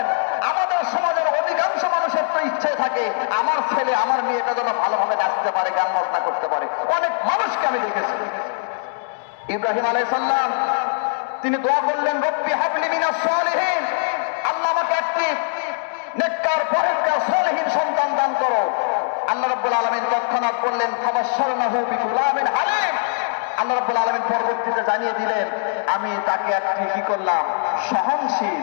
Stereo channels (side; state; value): right; silent; digital silence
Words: আমাদের সমাজের অধিকাংশ মানুষের তো ইচ্ছে থাকে আমার ছেলে, আমার মেয়েটা যেন ভালোভাবে নাচতে পারে, গান বাজনা করতে পারে। অনেক মানুষকে আমি দেখেছি। ইব্রাহিম আলাইহিস সালাম তিনি দোয়া করলেন রব্বি হাবলি মিনাস সলিহিন, আল্লাহ আমাকে একটি নেককার, পরেজগার, সলিহিন সন্তান দান করো। আল্লাহ রাব্বুল আলামিন তৎক্ষণাৎ বললেন ফাবাশশারনাহু বিগুলামিন হালিম। আল্লাহ রাব্বুল আলামিন পরবর্তীতে জানিয়ে দিলেন আমি তাকে একটি কি করলাম?